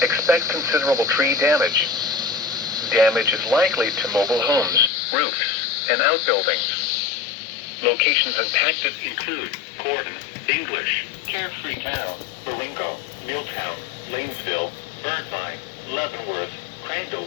Expect considerable tree damage. Damage is likely to mobile homes, roofs, and outbuildings. Locations impacted include Gordon, English, Carefree Town, Baringo, Milltown, Lanesville, Birdvine, Leavenworth,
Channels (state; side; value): drops out; right; at 4.9 s